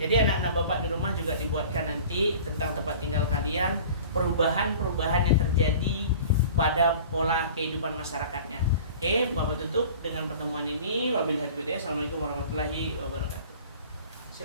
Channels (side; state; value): both; inverted; correlation -0.43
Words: anak-anak Bapak di rumah juga dibuatkan nanti tentang tempat tinggal kalian, perubahan-perubahan yang terjadi pada pola kehidupan masyarakatnya. Oke, Bapak tutup dengan pertemuan ini. Wabillahi taufiq. Assalamualaikum warahmatullahi wabarakatuh.